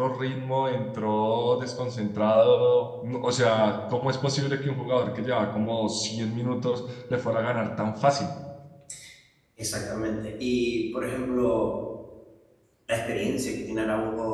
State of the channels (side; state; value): both; identical; correlation 1.00